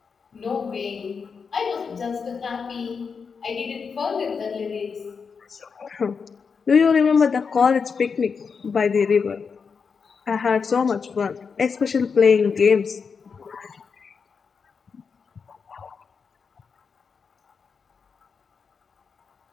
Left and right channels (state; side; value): quieter; right; 5.6 dB